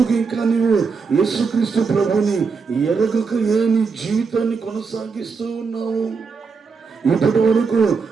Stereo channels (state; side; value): quieter; left; 5.0 dB